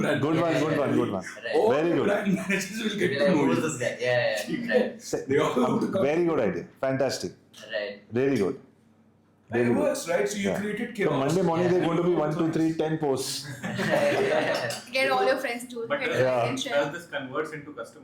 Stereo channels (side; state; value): both; identical; correlation 1.00